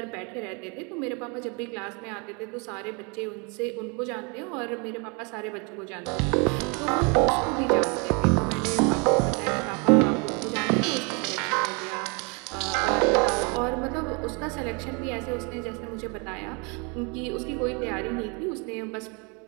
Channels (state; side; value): quieter; left; 32.4 dB